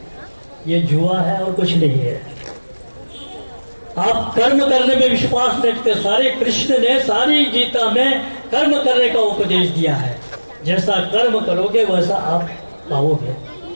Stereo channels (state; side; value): inverted; both; correlation -1.00